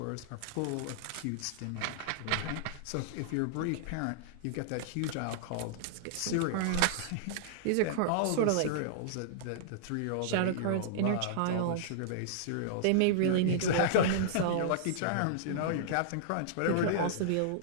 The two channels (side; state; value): both; different; correlation -0.01